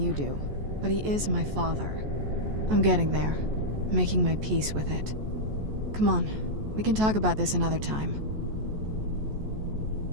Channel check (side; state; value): left; late; 14 ms